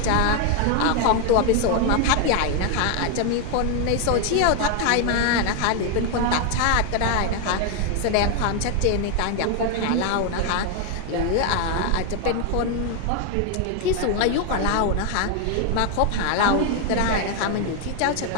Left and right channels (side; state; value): both; different; correlation 0.01